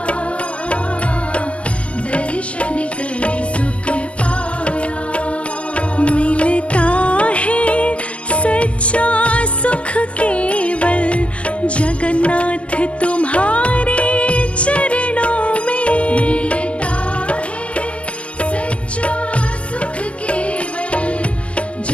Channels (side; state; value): right; late; 0.059 ms